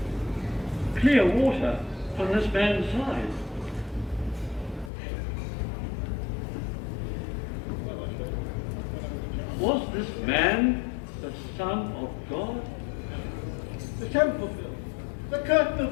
Clear water from this man's side. Was this man the Son of God? The temple, the curtain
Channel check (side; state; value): right; drops out; at 4.9 s